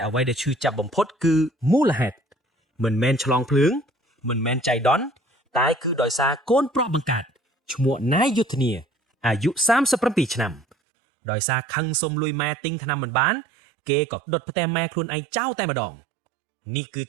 អ្វីដែលឈឺចាប់បំផុតគឺមូលហេតុមិនមែនឆ្លងភ្លើងមិនមែនចៃដន្យតែគឺដោយសារកូនប្រុសបង្កើតឈ្មោះណៃយុទ្ធនាអាយុ37ឆ្នាំដោយសារខឹងសុំលុយម៉ែទិញថ្នាំមិនបានគេក៏ដុតផ្ទះម៉ែខ្លួនឯងចោលតែម្ដងនេះគឺ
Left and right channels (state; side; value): drops out; left; at 10.8 s